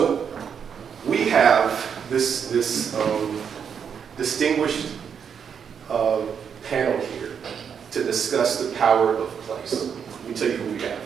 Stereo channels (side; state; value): left; quieter; 7.3 dB